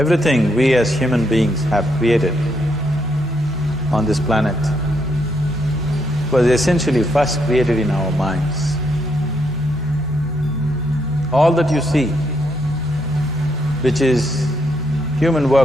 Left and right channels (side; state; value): both; normal; correlation 0.76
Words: we as human beings have created on this planet was essentially first created in our minds. All that you see, which is human